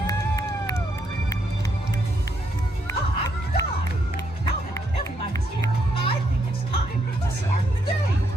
Hot dog! Now that everybody's here, I think it's time to start the day.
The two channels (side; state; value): both; normal; correlation 0.76